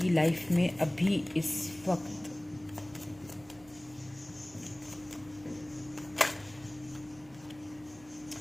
लाइफ में अभी इस वक्त।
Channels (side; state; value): right; noise; hum, 23 dB below the sound